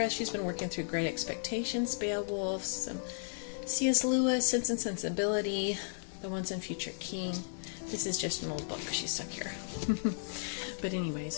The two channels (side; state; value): right; silent; digital silence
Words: She's been working through Great Expectations, Beowulf, some C.S. Lewis, Sense and Sensibility, The Once and Future King. This is just an old book she's stuck here. But anyway,